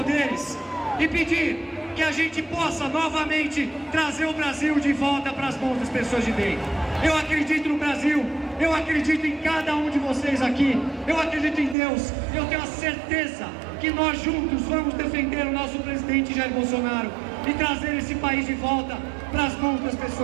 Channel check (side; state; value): left; drops out; at 11.8 s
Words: e pedir que a gente possa novamente trazer o Brasil de volta para as mãos das pessoas de bem. Eu acredito no Brasil, eu acredito em cada um de vocês aqui, eu acredito em Deus, eu tenho a certeza que nós juntos vamos defender o nosso presidente Jair Bolsonaro e trazer esse país de volta para as mãos das